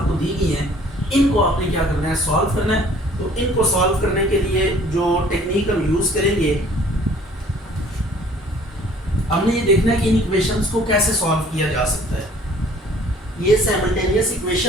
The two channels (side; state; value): both; normal; correlation 0.54